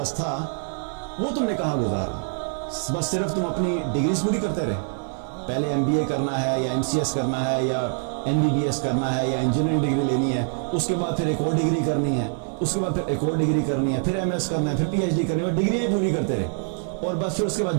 تھا وہ تم نے کہاں گزارا. بس صرف تم اپنی ڈگریز پوری کرتے رہے، پہلے MBA کرنا ہے یا MCS کرنا ہے یا MBBS کرنا ہے یا انجینئرنگ ڈگری لینی ہے، اس کے بعد پھر ایک اور ڈگری کرنی ہے، اس کے بعد پھر ایک اور ڈگری کرنی ہے، پھر MS کرنا ہے، پھر PhD کرنی ہے، ڈگریاں پوری کرتے رہے. اور بس پھر اس کے بعد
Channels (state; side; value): silent; left; 62 dB below the other